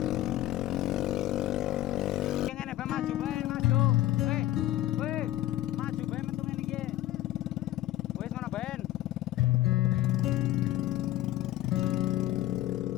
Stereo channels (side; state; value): right; quieter; 14.6 dB